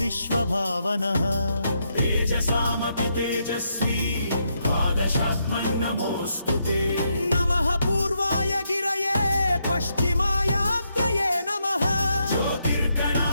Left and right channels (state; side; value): inverted; both; correlation -0.79